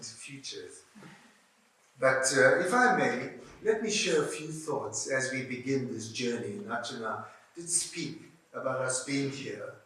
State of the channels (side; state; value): both; identical; correlation 1.00